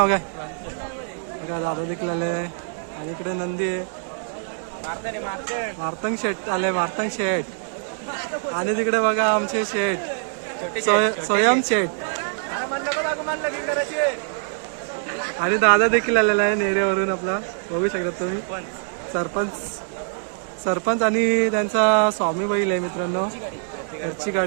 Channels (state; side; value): silent; left; digital silence